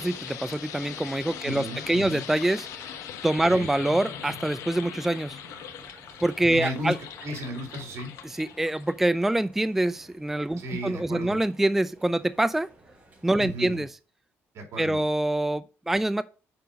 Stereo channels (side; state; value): both; normal; correlation 0.94